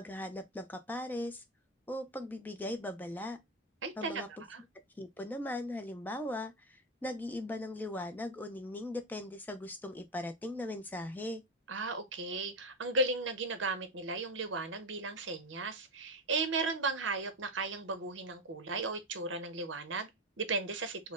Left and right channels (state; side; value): normal; both; correlation 0.13